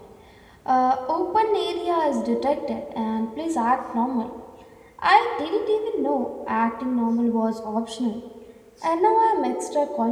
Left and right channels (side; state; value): both; identical; correlation 1.00